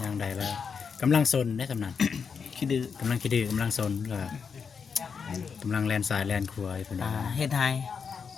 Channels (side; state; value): right; quieter; 6.1 dB